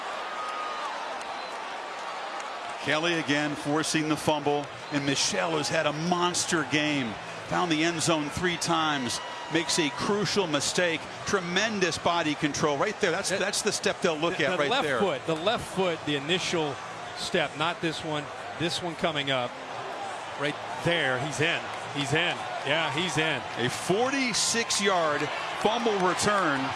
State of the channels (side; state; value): both; identical; correlation 1.00